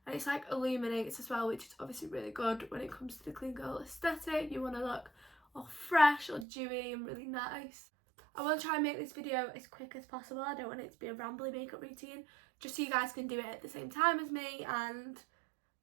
and it's like illuminates as well, which is obviously really good when it comes to the clean girl aesthetic. You want to look all fresh or dewy and really nice. I want to try and make this video as quick as possible. I don't want it to be a rambly makeup routine, just so you guys can do it at the same time as me, and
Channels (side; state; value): left; drops out; at 6.5 s